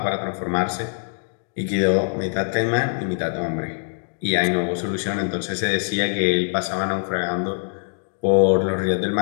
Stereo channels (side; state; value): right; silent; digital silence